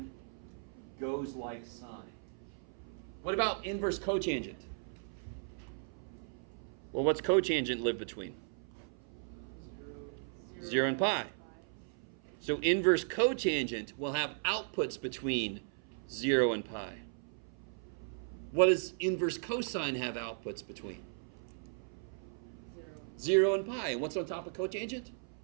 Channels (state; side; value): silent; left; 53 dB below the other